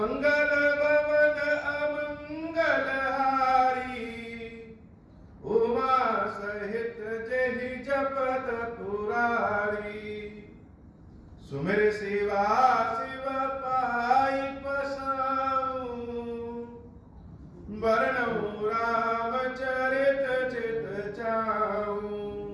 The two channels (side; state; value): both; identical; correlation 1.00